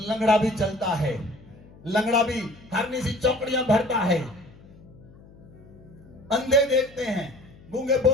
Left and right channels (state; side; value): noise; left; hum, 23 dB below the sound